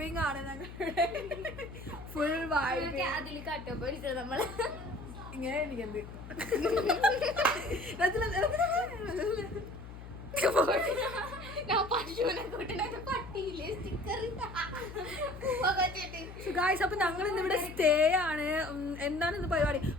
ആണ് ഞങ്ങളുടെ. Full vibing. നമ്മള് ഇങ്ങനെ എനിക്കെന്ത് അപ്പൊ ഞങ്ങൾ ഇന്നിവിടെ സ്റ്റേ ആണ്. എന്താണ് ഇന്ന് പരിപാടി?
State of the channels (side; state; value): left; noise; hum, 13 dB below the sound